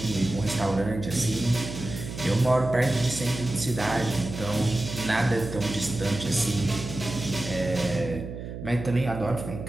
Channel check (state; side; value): noise; right; hum, 9 dB below the sound